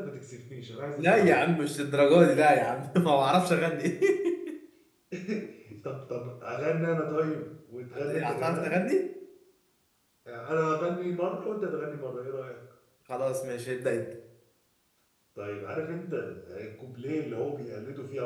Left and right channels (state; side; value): identical; both; correlation 1.00